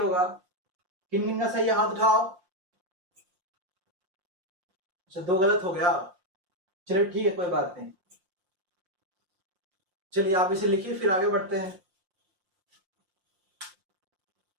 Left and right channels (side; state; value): left; late; 5.7 ms